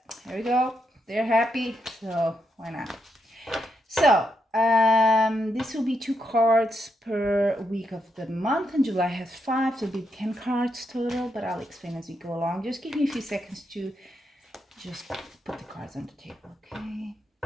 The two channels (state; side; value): normal; both; correlation 0.81